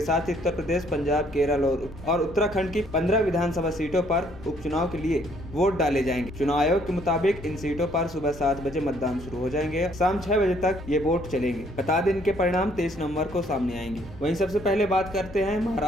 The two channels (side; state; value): both; normal; correlation 0.65